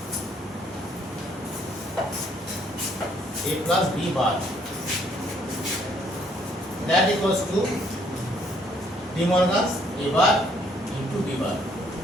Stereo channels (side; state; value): both; normal; correlation 0.66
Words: A plus B bar. That equals to De Morgan's A bar into B bar.